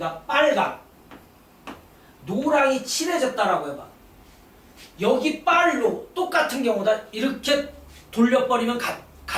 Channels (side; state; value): both; identical; correlation 1.00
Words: 빨강, 노랑이 칠해졌다라고 해봐. 여기 빨로 똑같은 경우다. 이렇게 돌려버리면